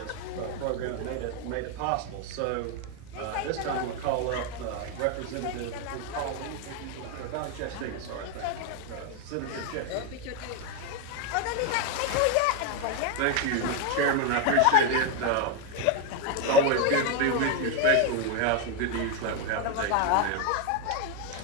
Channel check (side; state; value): both; different; correlation 0.01